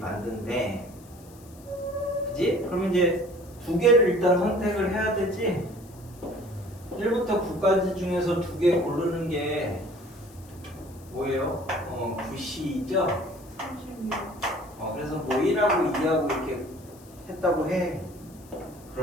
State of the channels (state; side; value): noise; left; hiss, 24 dB below the sound